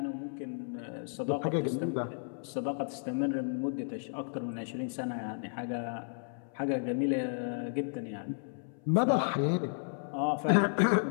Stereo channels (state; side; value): silent; right; 56 dB below the other